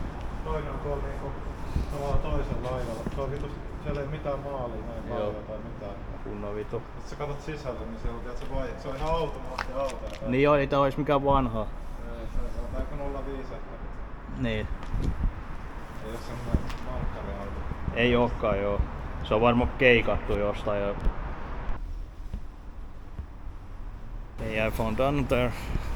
Toinen on tuolla niinku tavallaan toisella laidalla. Se on vitu, siellä ei mitään maalia näin paljon tai mitään. Kunnon vitu. Jos sä katot sisälle, niin siellä on, se on ihan automaatti. Niin joo, ei tää ois mikään vanha. Se on aika 05 ehkä. Niin. Ei oo semmonen markkariauto. Ei ookaan joo. Se on varmaan keikattu jostain jo. Yeah, I found another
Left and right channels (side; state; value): both; identical; correlation 1.00